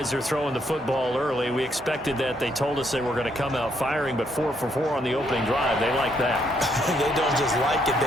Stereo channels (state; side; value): normal; both; correlation 0.73